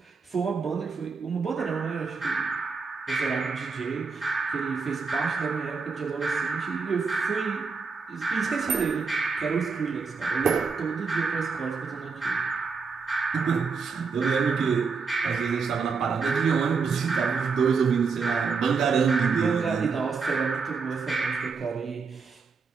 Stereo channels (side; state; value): left; quieter; 5.1 dB